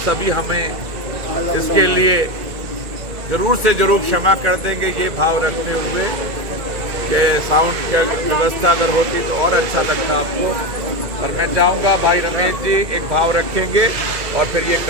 सभी हमें इसके लिए जरूर से जरूर क्षमा कर देंगे, ये भाव रखते हुए कि साउंड की व्यवस्था अगर होती तो और अच्छा लगता आपको। पर मैं चाहूँगा भाई रमेश जी एक भाव रखेंगे और फिर ये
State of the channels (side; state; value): left; late; 2.3 ms